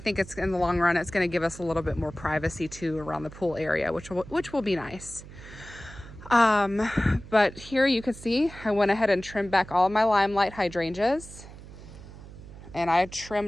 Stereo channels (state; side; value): noise; right; hum, 16 dB below the sound